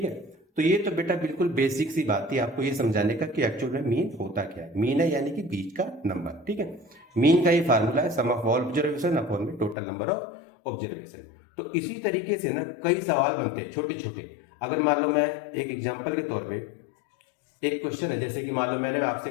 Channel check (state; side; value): drops out; right; at 9.8 s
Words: है। तो ये तो बेटा बिल्कुल बेसिक सी बात थी आपको ये समझाने का कि एक्चुअल में मीन होता क्या है। मीन है यानी कि बीच का नंबर। ठीक है। मीन का ये फार्मूला है सम ऑफ ऑल ऑब्जर्वेशन अपॉन में टोटल नंबर ऑफ ऑब्जर्वेशन। तो इसी तरीके से ना कई सवाल बनते हैं छोटे छोटे। अगर मान लो मैं एक एग्जाम्पल के तौर पे, एक क्वेश्चन है, जैसे कि मान लो मैंने आपसे